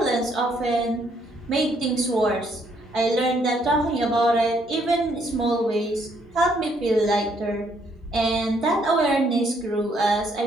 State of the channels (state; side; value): normal; both; correlation 0.69